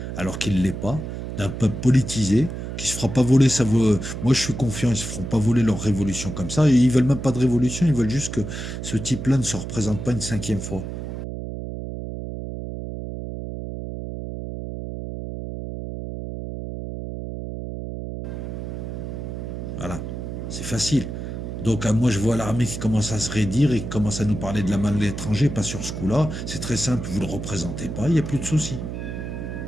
Alors qu'il ne l'est pas, d'un peuple politisé qui se fera pas voler Moi, je suis confiant, ils se feront pas voler leur révolution comme ça. Et ils veulent même pas de révolution, ils veulent juste que ce type-là ne se représente pas une cinquième fois. Voilà, c'est facile. Donc, moi, je vois l'armée qui commence à se raidir et qui commence à nous parler de la main de l'étranger, pas sur ce coup-là. C'est très simple, vous ne le représentez pas, il n'y a plus de souci.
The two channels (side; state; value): right; noise; hum, 7 dB below the sound